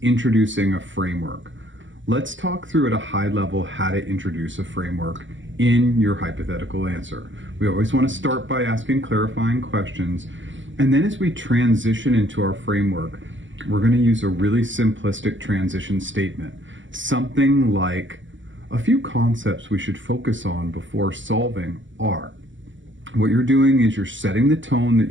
introducing a framework. Let's talk through at a high level how to introduce a framework in your hypothetical answer. We always want to start by asking clarifying questions, and then as we transition into our framework, we're going to use a really simplistic transition statement. Something like, a few concepts we should focus on before solving are. What you're doing is you're setting the tone that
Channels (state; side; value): late; left; 0.55 ms